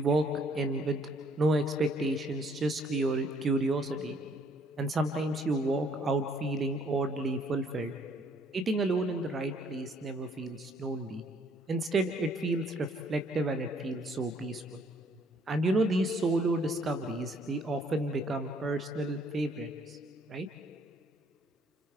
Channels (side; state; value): both; normal; correlation 0.63